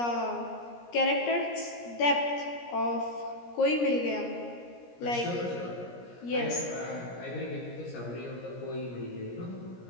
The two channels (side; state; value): right; late; 17 ms